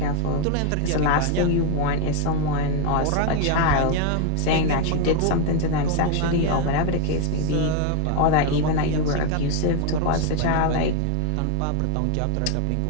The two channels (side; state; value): both; different; correlation 0.01